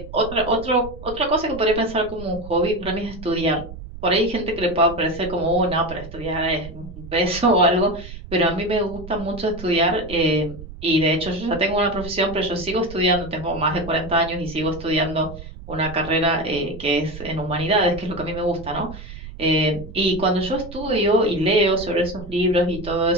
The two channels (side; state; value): right; noise; rumble, 13 dB below the sound